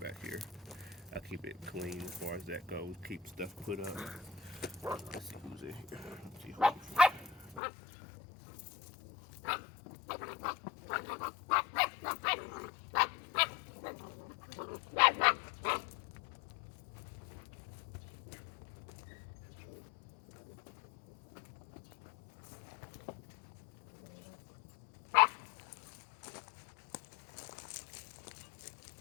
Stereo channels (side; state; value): right; drops out; at 7.6 s